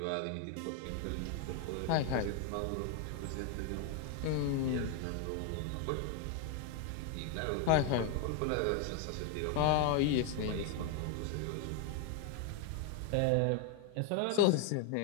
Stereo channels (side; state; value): both; different; correlation 0.01